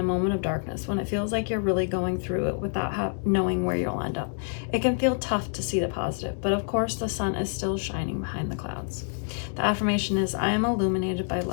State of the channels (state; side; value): silent; right; 60 dB below the other